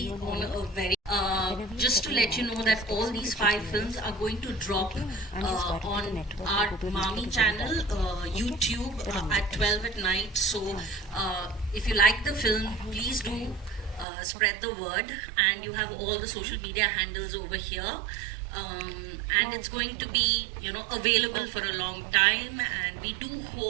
on a very. Just to let you know that all these 5 films are going to drop on our Mami channel, YouTube, at 12 at night. So if you like the film, please do spread the word, and you have all the social media handles over here. And it's going to be, available for a long time, and we do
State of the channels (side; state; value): left; drops out; at 14.1 s